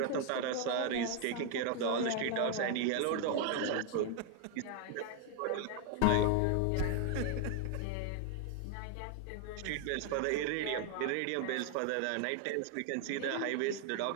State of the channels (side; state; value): both; different; correlation 0.01